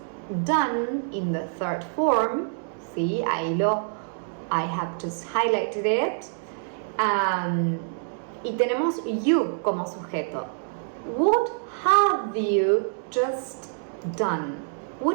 done in the third form. Sí, I have just highlighted it. Y tenemos you como sujeto. What have you just done?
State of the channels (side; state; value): left; silent; digital silence